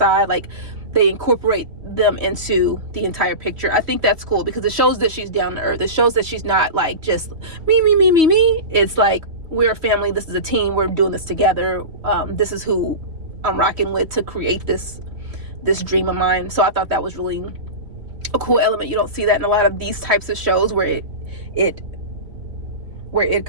like they incorporate them into the entire picture. I think that's cool because it shows that she's down to earth. It shows that she's not like just me. It's like, we're a family, this is a team, we're doing this together. This is who I'm rocking with to create this dream of mine. So I thought that was really a cool element. You don't see that in a lot of these types of shows where it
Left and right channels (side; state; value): left; late; 2.9 ms